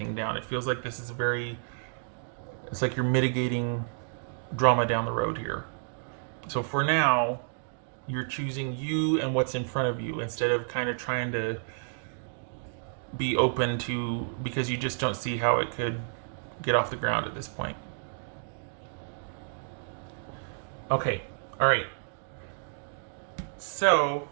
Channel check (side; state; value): left; silent; digital silence